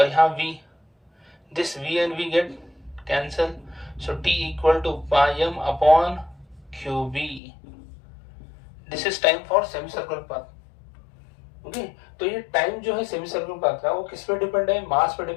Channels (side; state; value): right; drops out; at 7.4 s